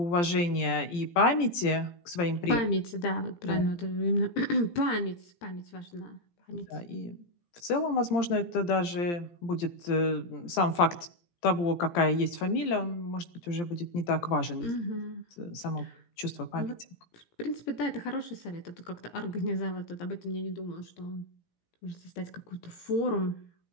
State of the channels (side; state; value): right; late; 17 ms